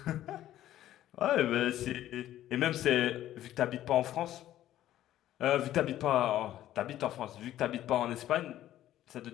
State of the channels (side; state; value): right; quieter; 13.0 dB